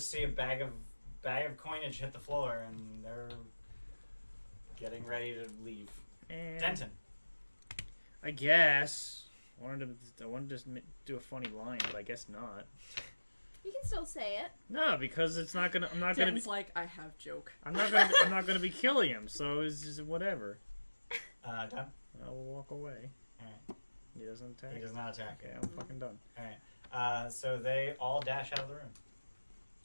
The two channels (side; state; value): both; inverted; correlation -1.00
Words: see a bag of coinage hit the floor and they're getting ready to leave. Denton. I guess. I wanted to do a funny line, but I guess not. You can still say it. No, because it's not gonna. I'm not gonna be. Den's like, I have joke. I'm not gonna be killing him. So it's just whatever. Done. I'll walk away. Alright. He doesn't attack. He does not attack. Okay, I'm fucking done. Alright. So they all dash out of the room.